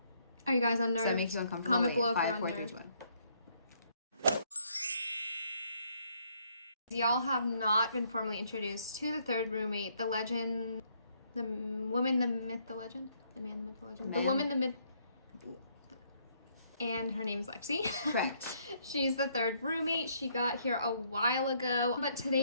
are you guys unnerved? Does that make you uncomfortable? Comment below if 5, you're 4, 3, unnerved. 2, 1. Y'all have not been formally introduced to the third roommate, the legend, the woman, the myth, the legend, the man, the myth, the legend, the woman, the myth, and her name's Lexi. Correct. She's the third roommate. She got here a while ago, but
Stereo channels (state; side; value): inverted; both; correlation -0.69